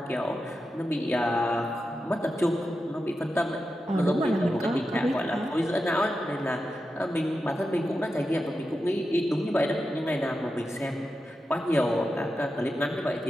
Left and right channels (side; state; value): both; normal; correlation 0.90